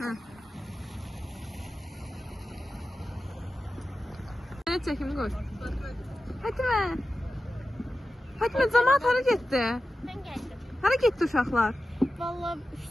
Ne çekimi koy. Fatime. Fatime cemaat hara getdi? Mən gəldim. Hara getdi uşaqlar? Valla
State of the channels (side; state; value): both; normal; correlation 0.93